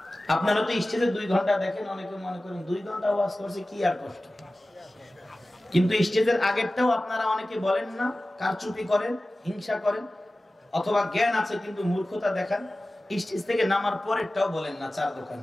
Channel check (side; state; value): both; normal; correlation 0.96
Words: আপনারা তো স্টেজে 2 ঘন্টা দেখেন, অনেকে মনে করেন 2 ঘন্টা ওয়াজ করছে কি আর কষ্ট, কিন্তু স্টেজের আগেরটাও আপনারা অনেকে বলেন না, কারচুপি করেন, হিংসা করেন, অথবা জ্ঞান আছে কিন্তু মূর্খতা দেখান। স্টেজ থেকে নামার পরেরটাও বলেন না।